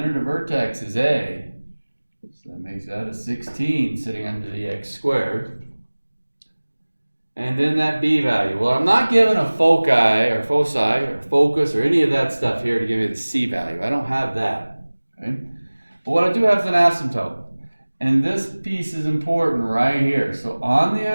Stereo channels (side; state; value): both; inverted; correlation -1.00